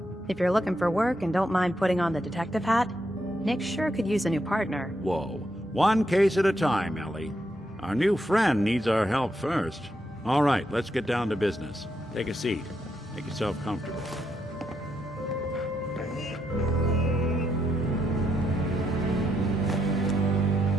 if you're looking for work and don't mind putting on the detective hat, Nick sure could use a new partner. Whoa. One case at a time, Ellie. Our new friend needs our help first. All right, let's get down to business. Take a seat. Make yourself comfortable.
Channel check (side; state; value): both; normal; correlation 0.80